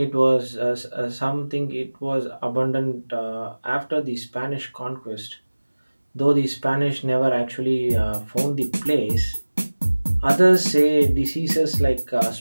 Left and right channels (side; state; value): both; inverted; correlation -1.00